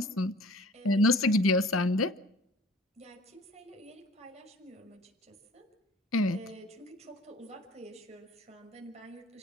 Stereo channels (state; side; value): normal; both; correlation 0.48